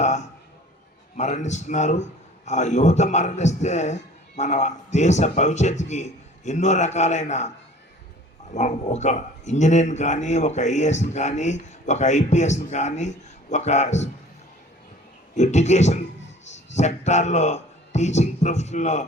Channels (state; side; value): normal; both; correlation 0.48